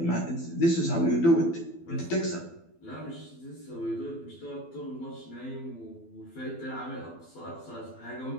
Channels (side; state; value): right; late; 12 ms